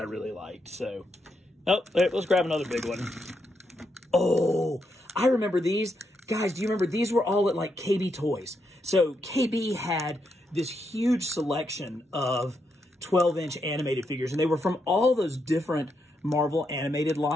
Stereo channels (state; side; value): normal; both; correlation 0.81